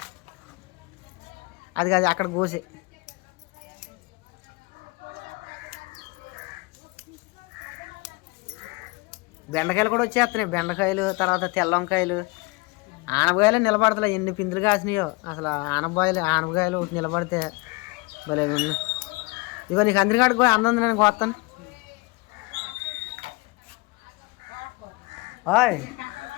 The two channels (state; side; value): quieter; right; 25.8 dB